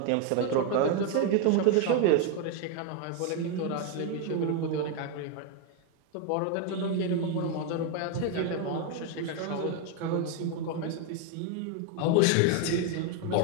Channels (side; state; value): both; different; correlation 0.01